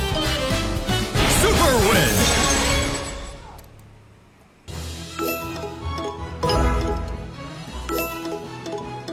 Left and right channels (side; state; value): both; identical; correlation 1.00